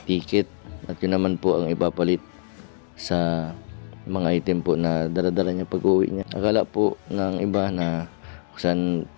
ticket. At yun naman po ang ipapalit sa mga item po na dala-dala niya pag-uwi niya. Akala po ng iba na kung saan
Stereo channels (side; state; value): right; silent; digital silence